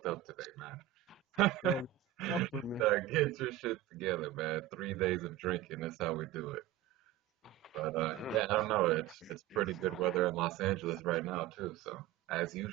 up today, man. Bro, fuck with me. Get your shit together, man. 3 days of drinking. That's how we do it. But yeah, I don't know. It's pretty good weather in Los Angeles right now too. So as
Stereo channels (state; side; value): quieter; left; 13.2 dB